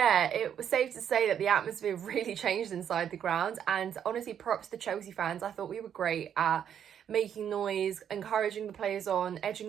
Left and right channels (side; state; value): left; quieter; 8.9 dB